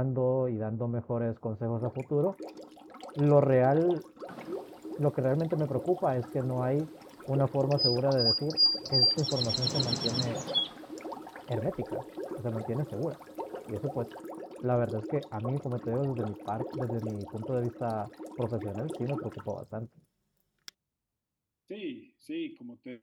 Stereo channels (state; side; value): identical; both; correlation 1.00